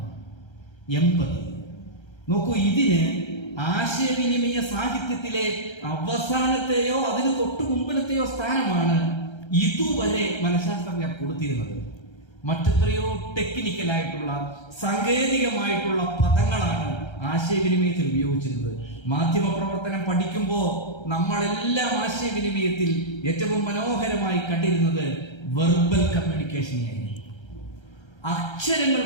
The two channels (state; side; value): late; right; 1.3 ms